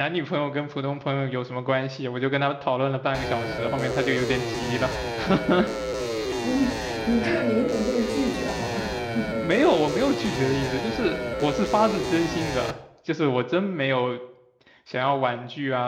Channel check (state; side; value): identical; both; correlation 1.00